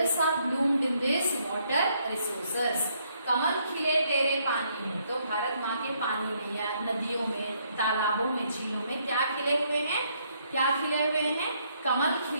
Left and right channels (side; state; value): both; inverted; correlation -0.71